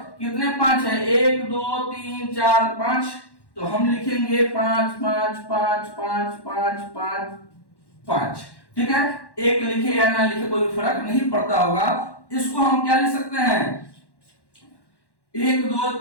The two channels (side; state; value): right; late; 1.1 ms